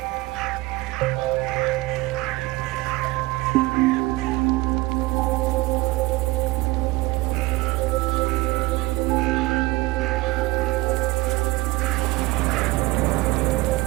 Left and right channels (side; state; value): left; quieter; 21.2 dB